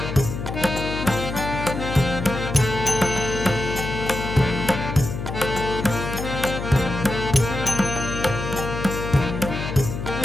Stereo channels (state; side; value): noise; left; hum, 5 dB below the sound